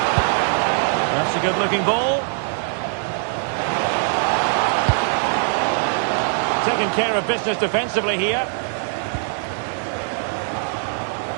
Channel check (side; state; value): left; silent; 65 dB below the other